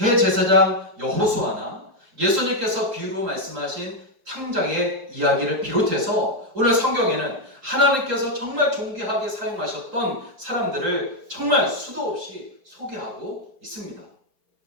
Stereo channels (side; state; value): left; late; 4.8 ms